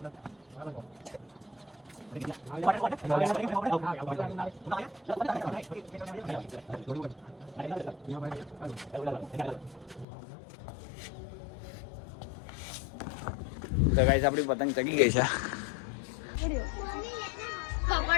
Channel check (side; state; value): right; drops out; at 10.1 s